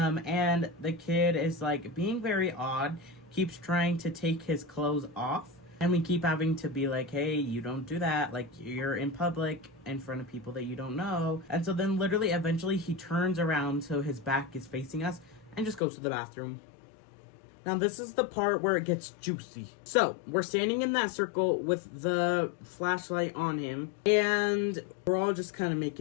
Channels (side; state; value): right; drops out; at 15.8 s